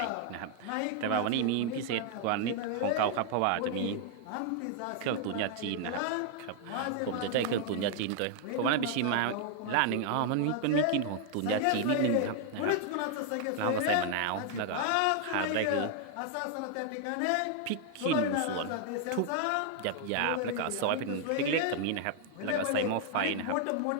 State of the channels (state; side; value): different; both; correlation 0.00